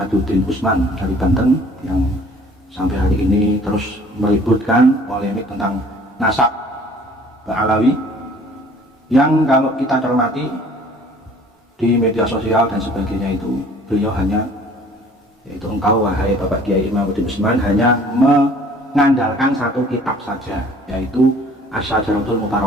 Usman dari Banten yang sampai hari ini terus meributkan polemik tentang nasab Ba'alawi, yang kalau kita cermati di media sosial dan sebagainya itu beliau hanya, yaitu engkau wahai Bapak Kiai Imaduddin Usman, hanya mengandalkan satu kitab saja, yaitu Asy-Syajaratul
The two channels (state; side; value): normal; both; correlation 0.53